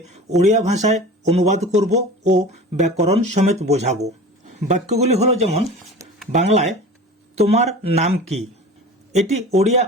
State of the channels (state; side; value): normal; both; correlation 0.37